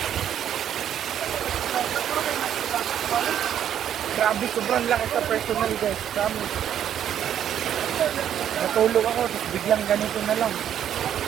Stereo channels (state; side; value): quieter; left; 9.9 dB